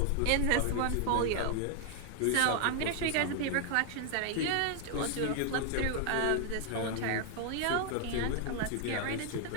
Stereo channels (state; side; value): different; both; correlation 0.00